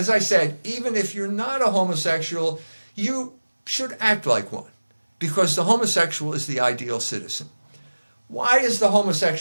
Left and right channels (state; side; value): inverted; both; correlation -1.00